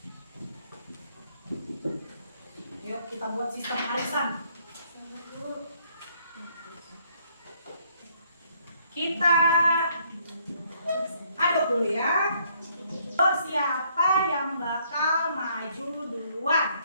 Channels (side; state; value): both; inverted; correlation -0.68